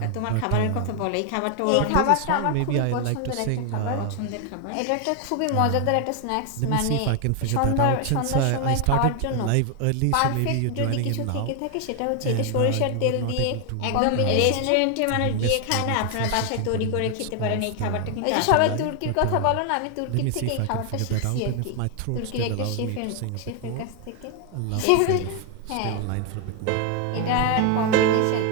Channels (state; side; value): different; both; correlation 0.00